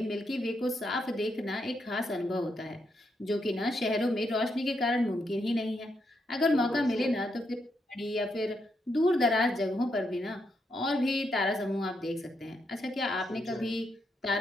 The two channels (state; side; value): normal; both; correlation 0.80